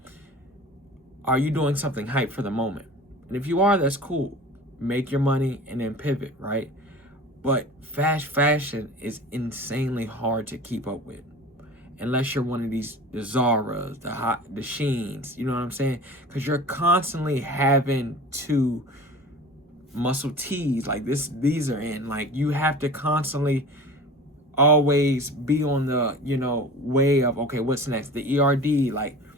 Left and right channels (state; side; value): normal; both; correlation 0.38